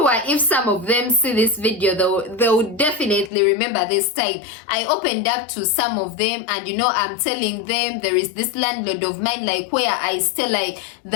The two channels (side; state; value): right; drops out; at 3.3 s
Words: if some of them see this video, they'll definitely remember this time. I opened up to some of them, and you know, I'm telling them there is this landlord of mine, like where I stay, like